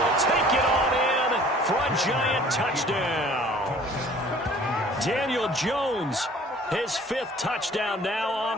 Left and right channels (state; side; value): normal; both; correlation 0.51